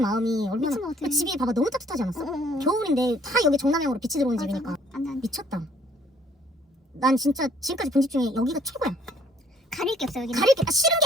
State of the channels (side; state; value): both; normal; correlation 0.60